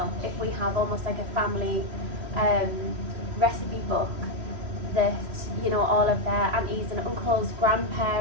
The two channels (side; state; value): left; late; 3.0 ms